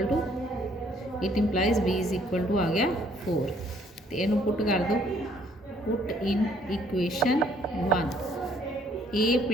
to it implies b is equal to आ गया 4। तो इनू पुट कर दो, put in equation 1 a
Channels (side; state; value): both; normal; correlation 0.63